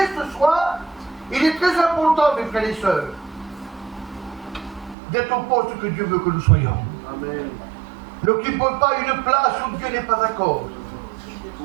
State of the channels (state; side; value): drops out; left; at 5.0 s